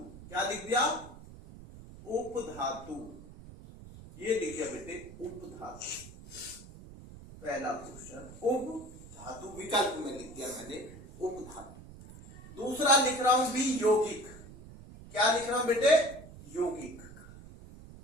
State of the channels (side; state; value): right; noise; rumble, 17 dB below the sound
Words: क्या लिख दिया? उपधातु, ये लिख दिया बेटे उपधातु, पहला क्वेश्चन उपधातु, विकल्प में लिख दिया मैंने उपधातु। दूसरा लिख रहा हूं भी यौगिक, क्या लिख रहा हूं बेटे? यौगिक,